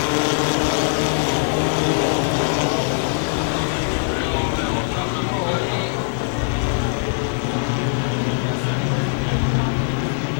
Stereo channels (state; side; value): silent; right; 59 dB below the other